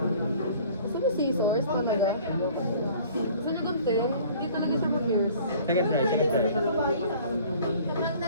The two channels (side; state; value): both; inverted; correlation -0.51